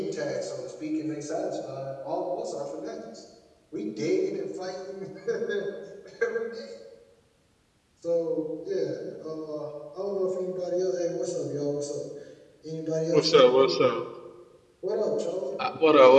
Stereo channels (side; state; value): both; identical; correlation 1.00